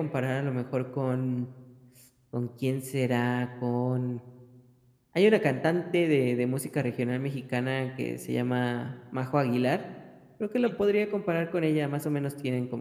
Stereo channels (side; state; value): both; identical; correlation 1.00